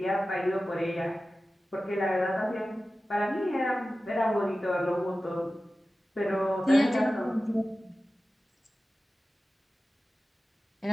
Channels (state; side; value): normal; both; correlation 0.95